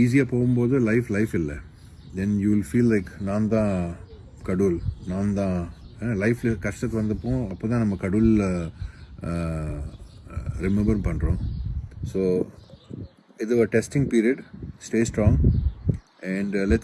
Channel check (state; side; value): identical; both; correlation 1.00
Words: போகும்போது லைஃப் இல்லை. Then you will feel like நான் தான் கடவுள், நான் தான் லைஃப்பில் கஷ்டத்துக்கு வந்தப்போ அப்போ தான் நம்ம கடவுளில் ரிமெம்பர் பண்ணுறோம். ஸோ இது ஒரு testing period. Stay strong and